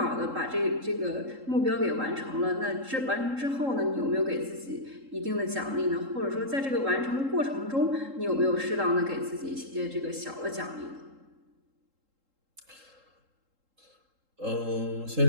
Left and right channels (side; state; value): left; late; 3.7 ms